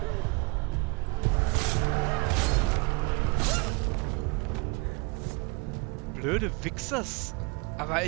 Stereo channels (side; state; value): left; quieter; 27.0 dB